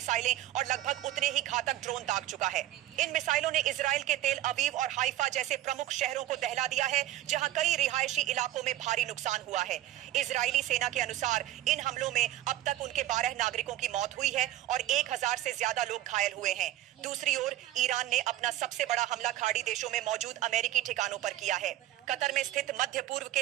और लगभग उतने ही घातक ड्रोन दाग चुका है। इन मिसाइलों ने इजराइल के तेल अवीव और हाइफा जैसे प्रमुख शहरों को दहला दिया है, जहां कई रिहायशी इलाकों में भारी नुकसान हुआ है। इजरायली सेना के अनुसार इन हमलों में अब तक उनके 12 नागरिकों की मौत हुई है और 1000 से ज्यादा लोग घायल हुए हैं। दूसरी ओर ईरान ने अपना सबसे बड़ा हमला खाड़ी देशों में मौजूद अमेरिकी ठिकानों पर किया है। कतर में स्थित मध्य पूर्व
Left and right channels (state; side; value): quieter; left; 14.2 dB